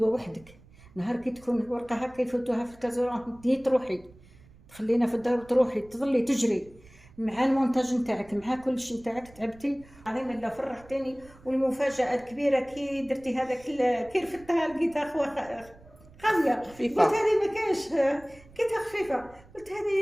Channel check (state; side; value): noise; right; rumble, 24 dB below the sound